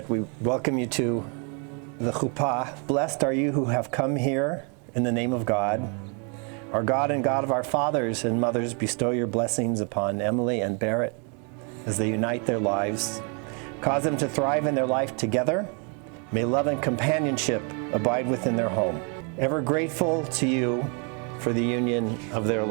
we welcome you to the chuppah. Blessed are you who have come here in the name of God. Our God and God of our fathers and mothers, bestow your blessings upon Emily and Barrett as they unite their lives. Cause them to thrive in their life together. May love and companionship abide within their home. Ever grateful to you for the union of their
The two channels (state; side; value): quieter; left; 37.2 dB